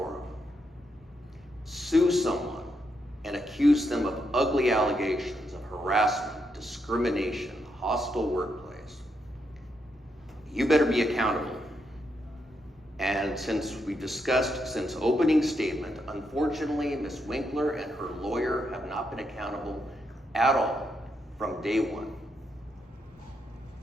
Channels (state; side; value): normal; both; correlation 0.80